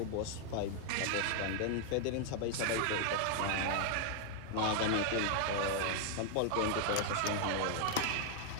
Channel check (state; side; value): different; both; correlation 0.00